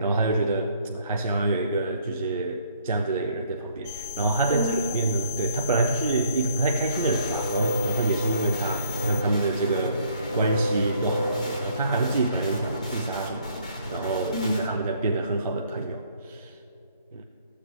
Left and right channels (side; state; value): both; inverted; correlation -0.64